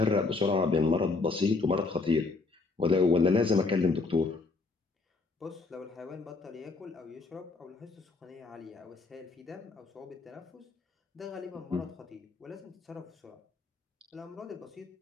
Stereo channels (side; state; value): right; quieter; 3.8 dB